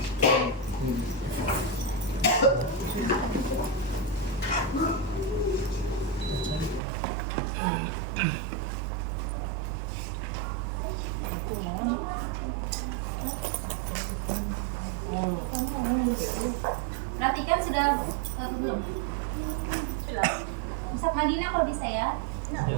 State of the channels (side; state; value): left; drops out; at 6.8 s